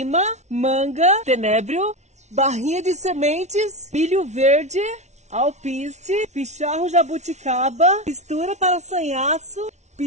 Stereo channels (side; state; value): left; late; 0.32 ms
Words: manga, tenebro, barrinha de sementes, milho verde, alpiste, picharro jabuticaba, mistura para sanhaço,